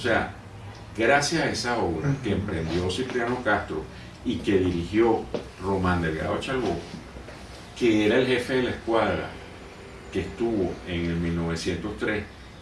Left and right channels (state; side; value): identical; both; correlation 1.00